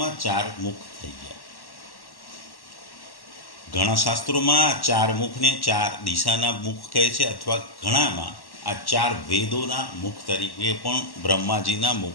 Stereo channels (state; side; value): late; right; 1.1 ms